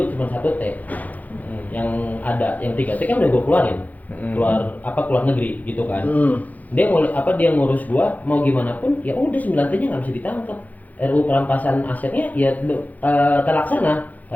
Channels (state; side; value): late; right; 0.079 ms